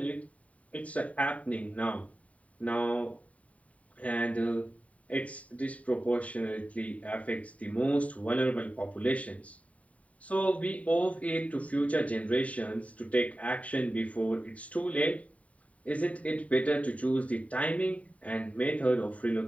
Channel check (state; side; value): late; right; 0.068 ms